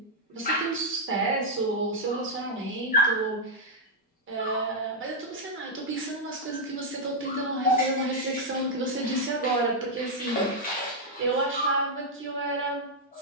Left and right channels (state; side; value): normal; both; correlation -0.03